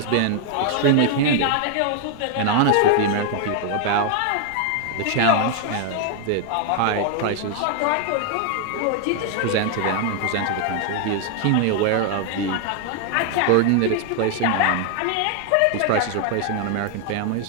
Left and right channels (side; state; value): both; different; correlation 0.00